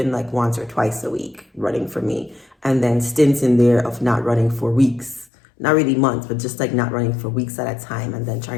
like once or twice a week running for me. And then stints in there of not running for weeks, not really months, but just like not running for weeks at a time and then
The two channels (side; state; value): right; drops out; at 5.2 s